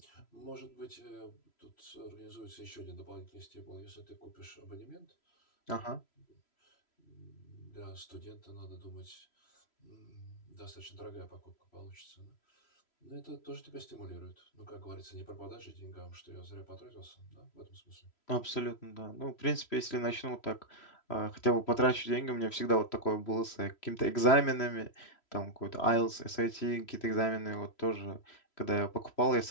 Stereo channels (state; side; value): late; right; 3.0 ms